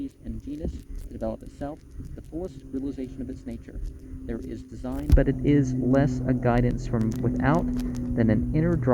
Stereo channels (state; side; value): identical; both; correlation 1.00